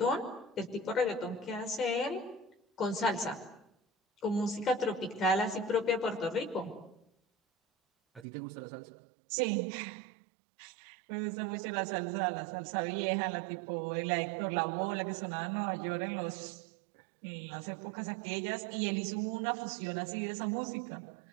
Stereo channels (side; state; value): left; drops out; at 8.2 s